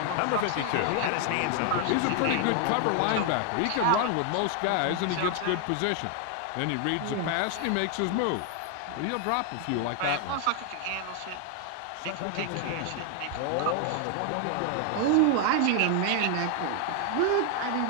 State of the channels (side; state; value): both; different; correlation 0.00